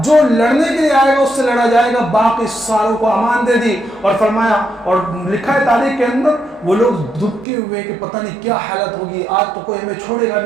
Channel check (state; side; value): drops out; left; at 7.5 s